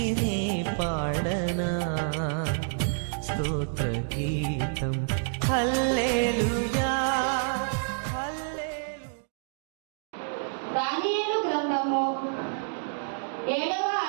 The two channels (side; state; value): left; silent; digital silence